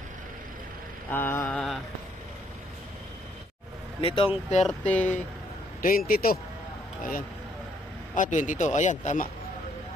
Nitong 22. Ayan. 22. Ayan, tama.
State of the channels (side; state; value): both; normal; correlation 0.69